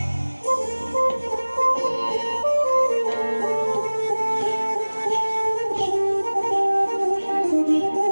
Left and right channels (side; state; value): both; inverted; correlation -1.00